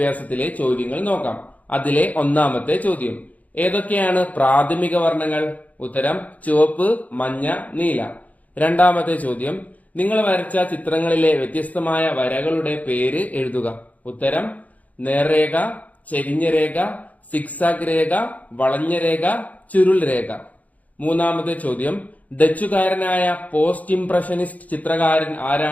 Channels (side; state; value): right; late; 0.074 ms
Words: ചോദ്യങ്ങൾ നോക്കാം. അതിലെ ഒന്നാമത്തെ ചോദ്യം, ഏതൊക്കെയാണ് പ്രാഥമിക വർണ്ണങ്ങൾ? ഉത്തരം ചുവപ്പ്, മഞ്ഞ, നീല. രണ്ടാമത്തെ ചോദ്യം, നിങ്ങൾ വരച്ച ചിത്രങ്ങളിലെ വ്യത്യസ്തമായ വരകളുടെ പേര് എഴുതുക. ഉത്തരം നേർരേഖ, ചെരിഞ്ഞ രേഖ, സിക്സാഗ് രേഖ, വളഞ്ഞ രേഖ, ചുരുൾ രേഖ. മൂന്നാമത്തെ ചോദ്യം, ഡച്ചുകാരനായ പോസ്റ്റ് ഇംപ്രഷനിസ്റ്റ് ചിത്രകാരൻ